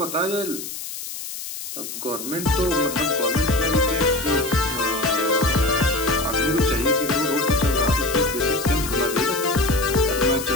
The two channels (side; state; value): left; noise; hiss, 9 dB below the sound